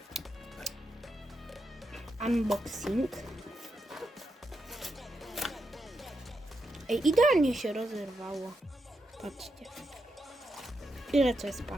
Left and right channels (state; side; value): normal; both; correlation 0.85